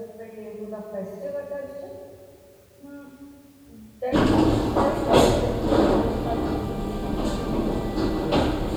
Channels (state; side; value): identical; both; correlation 1.00